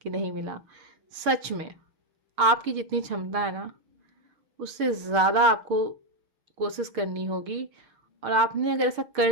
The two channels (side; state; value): left; late; 6.6 ms